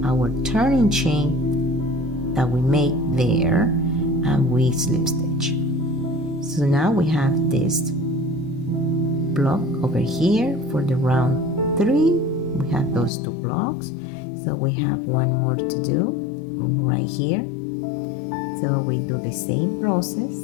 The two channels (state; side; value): drops out; right; at 13.1 s